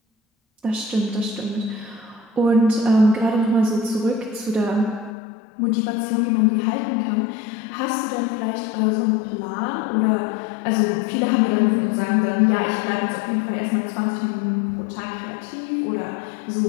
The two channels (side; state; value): right; drops out; at 5.2 s